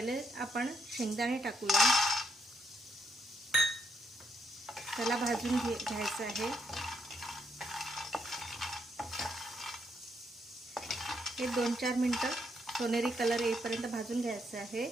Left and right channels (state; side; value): normal; both; correlation 0.76